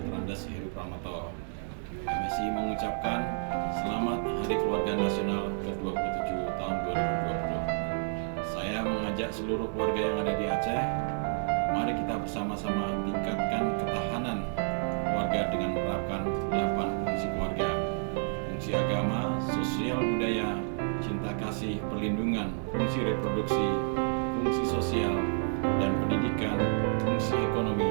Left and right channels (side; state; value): left; silent; digital silence